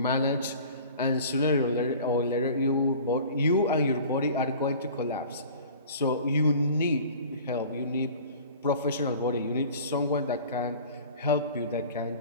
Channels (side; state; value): both; inverted; correlation -0.44